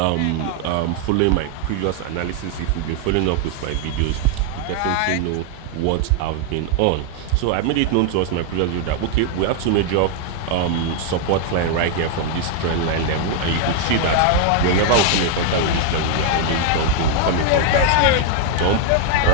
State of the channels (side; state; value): both; different; correlation 0.00